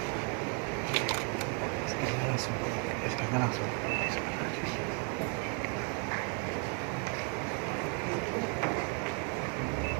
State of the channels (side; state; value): left; quieter; 38.4 dB